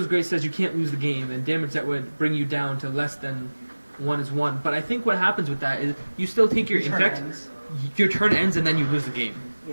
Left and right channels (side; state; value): both; inverted; correlation -1.00